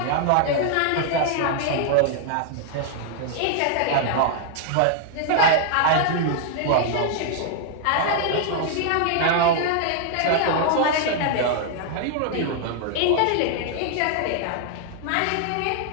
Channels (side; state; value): both; different; correlation 0.00